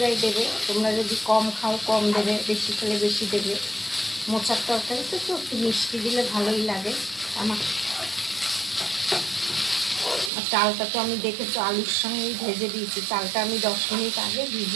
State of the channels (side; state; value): left; drops out; at 10.3 s